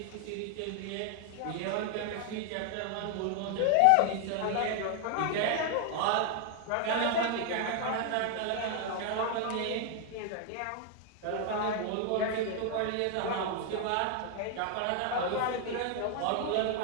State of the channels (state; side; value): different; both; correlation 0.00